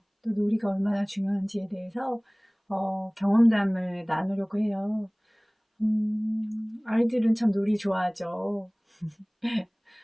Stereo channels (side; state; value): both; identical; correlation 1.00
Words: 또 놀이가 얼마나 중요한지에 대해서 경험담을 나누려고 해요. 아이들은 참 놀이 좋아하죠.